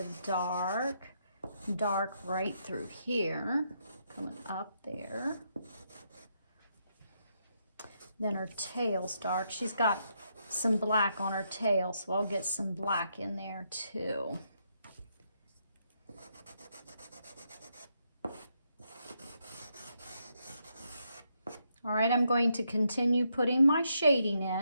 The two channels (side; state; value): both; inverted; correlation -0.78